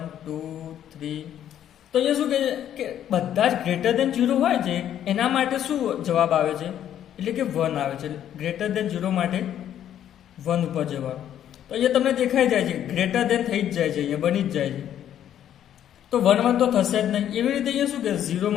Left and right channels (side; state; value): right; quieter; 10.6 dB